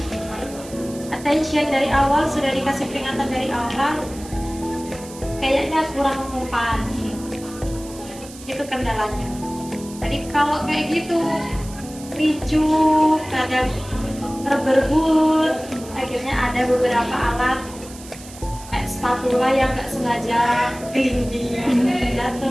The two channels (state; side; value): noise; right; hiss, 17 dB below the sound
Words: attention dari awal, sudah dikasih peringatan dari awal, kayaknya kurang mempan. Itu kendalanya. Jadi kalau kayak gitu ricu, kadang berebut, akhirnya ada beberapa alat kayak spatula yang nggak sengaja gelinding,